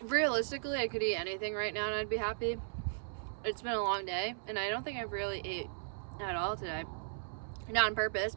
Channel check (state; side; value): silent; left; 53 dB below the other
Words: Realistically, I could eat anything right now and I'd be happy. It's been a long day, and I don't think I've really ate at all today. Not on purpose,